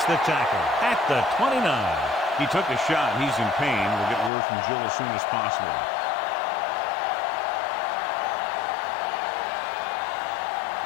the tackle at the 29. He took a shot. He's in pain. We'll get word from Jill as soon as possible.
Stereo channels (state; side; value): drops out; right; at 4.3 s